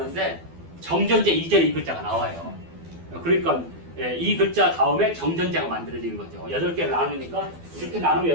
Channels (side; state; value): left; late; 12 ms